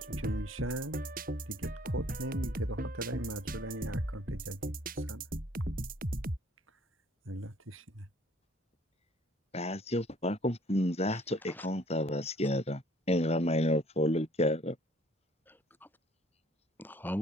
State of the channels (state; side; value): normal; both; correlation 0.58